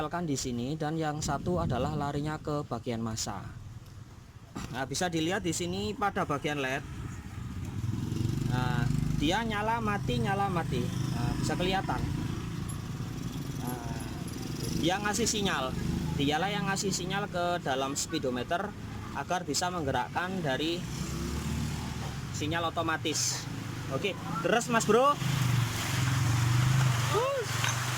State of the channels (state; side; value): identical; both; correlation 1.00